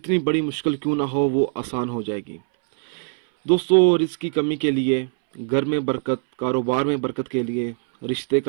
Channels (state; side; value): silent; left; 64 dB below the other